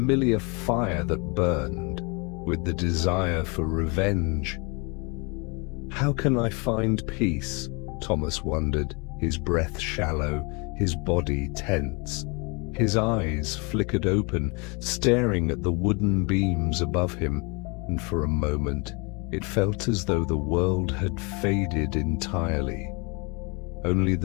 fire that burned, with the desire for revenge. How can I find peace? Thomas wondered, his breath shallow, his body tense. His eyes flickered open, staring at the wooden beams above him, and for a moment it felt as though the world had faded entirely. Only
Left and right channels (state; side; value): quieter; right; 30.8 dB